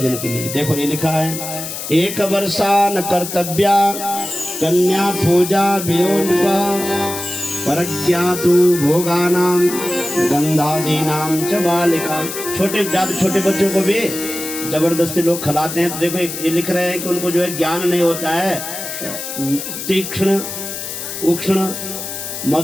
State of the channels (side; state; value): left; noise; hiss, 7 dB below the sound